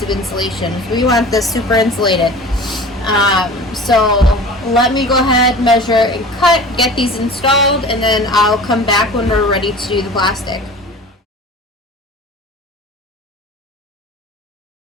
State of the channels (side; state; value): both; normal; correlation 0.39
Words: of insulation. We want this super insulated. So let me go ahead, measure and cut, get these installed, and then I'll come back when we're ready to do the plastic.